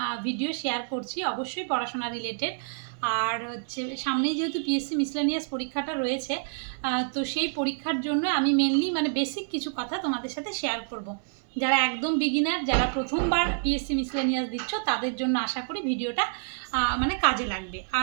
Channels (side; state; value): left; silent; 59 dB below the other